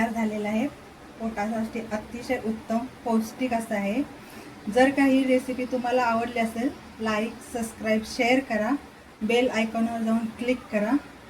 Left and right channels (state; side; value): identical; both; correlation 1.00